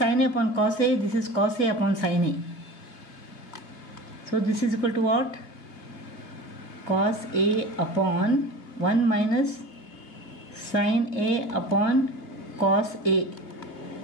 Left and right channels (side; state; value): right; late; 2.7 ms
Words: A upon cos A, this is cos A upon sin A. So this is equal to what? Cos A upon 1 minus sin A upon cos A